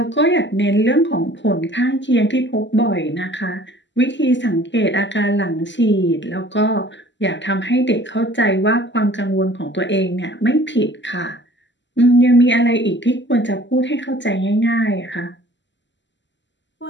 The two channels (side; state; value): right; late; 0.53 ms